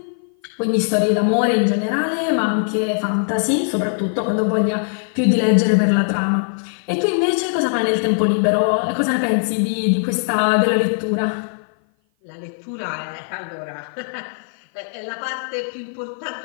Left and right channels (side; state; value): right; silent; 55 dB below the other